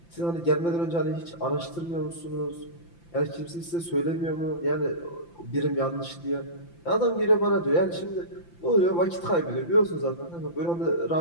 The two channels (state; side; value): late; right; 5.9 ms